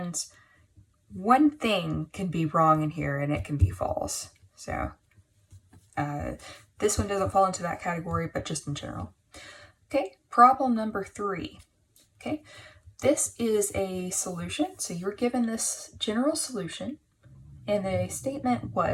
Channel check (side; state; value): both; identical; correlation 1.00